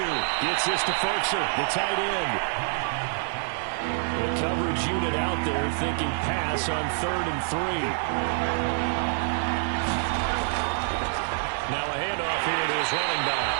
gets this to Ferkser, the tight end. The coverage unit out there thinking pass on 3rd and 3. Now a handoff here to his running back.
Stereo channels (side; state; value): left; silent; digital silence